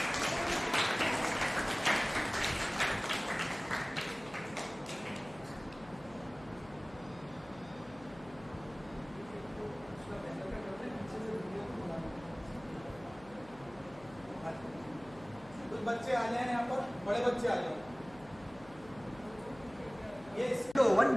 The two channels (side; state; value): left; noise; hum, 21 dB below the sound